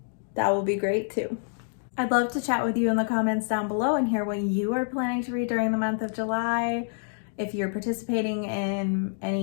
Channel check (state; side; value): silent; right; digital silence